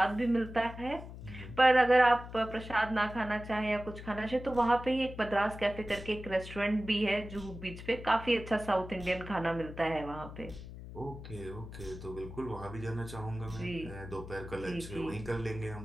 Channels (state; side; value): noise; left; hum, 12 dB below the sound